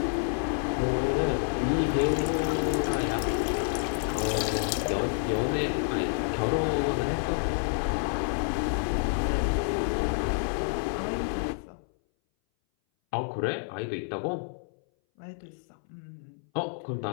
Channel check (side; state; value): right; silent; 59 dB below the other